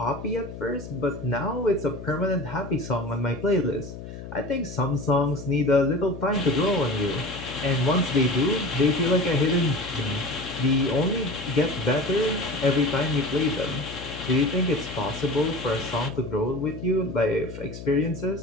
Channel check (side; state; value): left; noise; hum, 11 dB below the sound